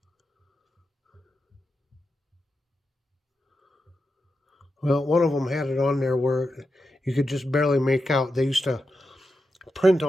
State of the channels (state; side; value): normal; both; correlation 0.89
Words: Well, one of them had it on there where you could just barely make out. They used to print